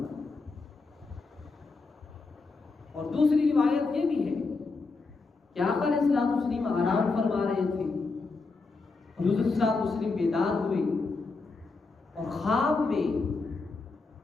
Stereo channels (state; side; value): quieter; right; 4.0 dB